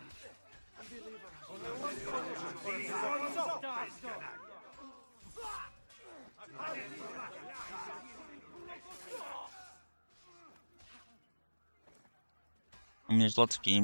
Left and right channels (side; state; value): both; inverted; correlation -1.00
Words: mean, there's lots of